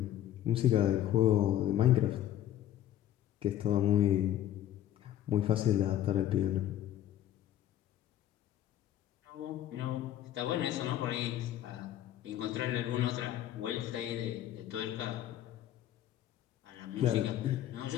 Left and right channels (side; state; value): right; quieter; 12.0 dB